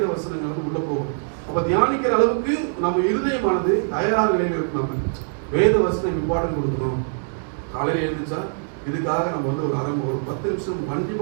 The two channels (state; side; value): silent; left; digital silence